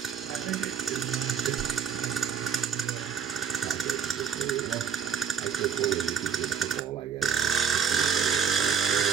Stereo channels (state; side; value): quieter; left; 7.4 dB